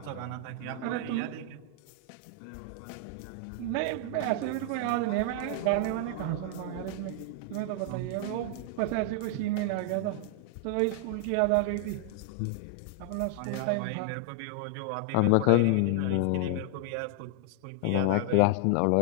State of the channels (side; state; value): both; different; correlation 0.00